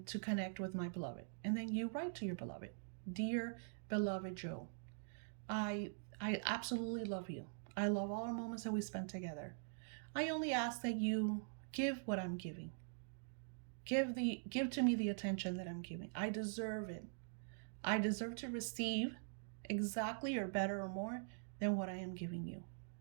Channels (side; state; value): left; silent; digital silence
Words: to connect with my beloved. And then you write to your beloved. Dear beloved Joe, I absolutely love you. I love all our moments that we spent together. I only ask that you give what I'm giving. Give to me the attention that I'm giving. I deserve it. I deserve to receive exactly or better or more than what I am giving you.